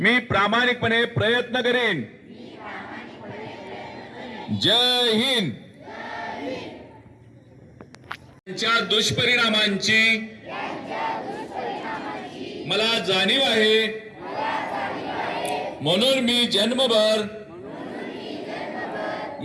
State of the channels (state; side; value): identical; both; correlation 1.00